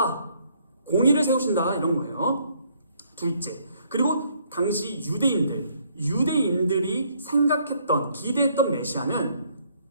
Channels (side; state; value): both; inverted; correlation -0.67